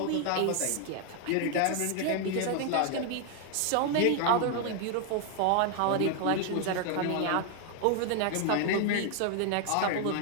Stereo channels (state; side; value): different; both; correlation 0.01